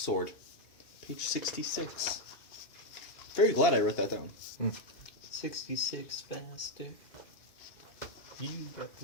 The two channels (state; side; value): late; right; 2.8 ms